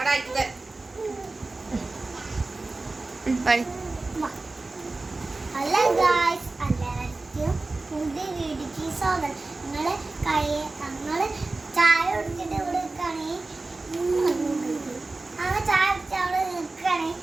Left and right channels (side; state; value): left; quieter; 3.3 dB